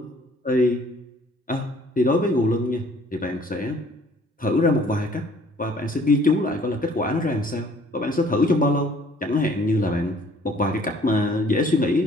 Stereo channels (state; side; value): normal; both; correlation 0.57